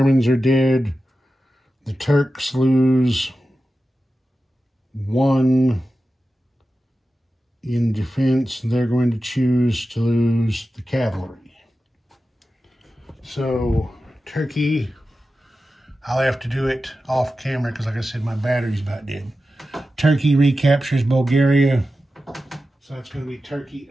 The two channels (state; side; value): normal; both; correlation 0.93